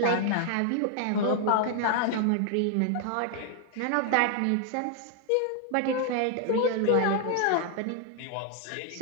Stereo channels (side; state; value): both; different; correlation 0.00